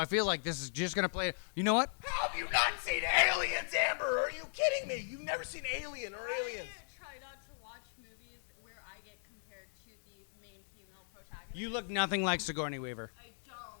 feel like this is just gonna play. You know what? How have you not seen Aliens, Amber? Are you kidding me? You've never seen Alien or Aliens. I try not to watch movies where I get compared to the main female protagonist. You look nothing like Sigourney Weaver. I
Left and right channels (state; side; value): silent; right; digital silence